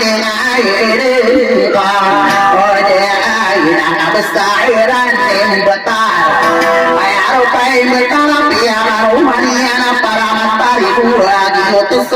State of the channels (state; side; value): identical; both; correlation 1.00